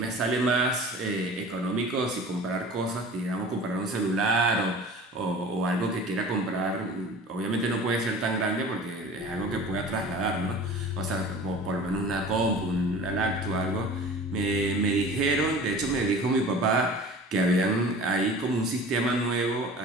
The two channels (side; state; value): both; normal; correlation 0.41